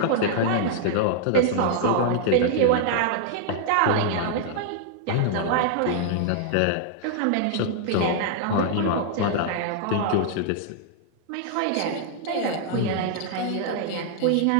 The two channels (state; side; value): different; both; correlation -0.01